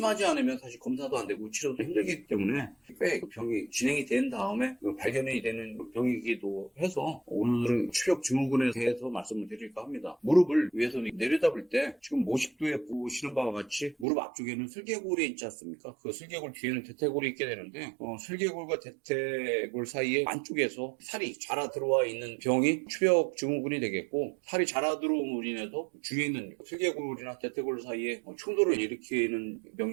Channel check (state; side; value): drops out; left; at 14.1 s